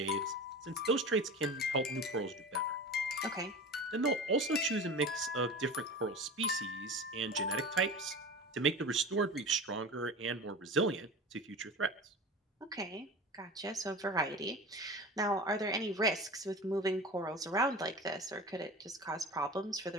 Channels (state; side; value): normal; both; correlation 0.32